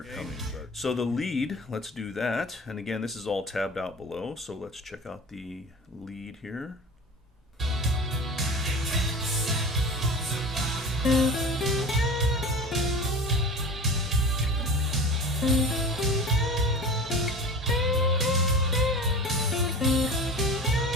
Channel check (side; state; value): both; normal; correlation 0.35